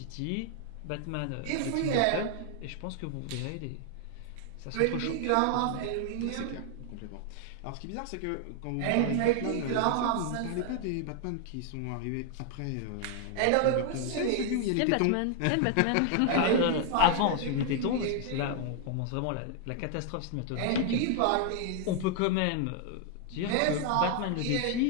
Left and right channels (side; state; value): both; different; correlation 0.00